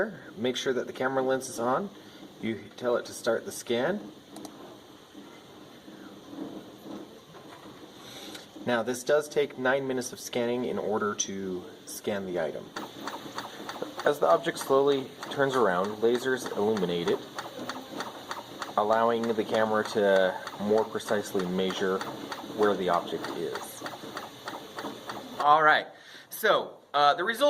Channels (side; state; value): both; identical; correlation 1.00